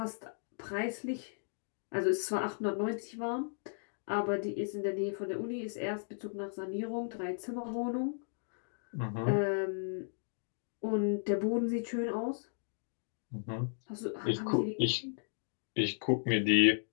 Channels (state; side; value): silent; right; digital silence